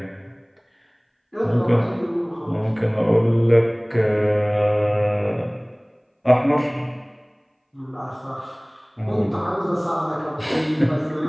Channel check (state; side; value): identical; both; correlation 1.00